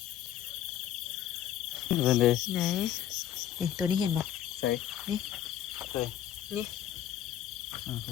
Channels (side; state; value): right; quieter; 11.2 dB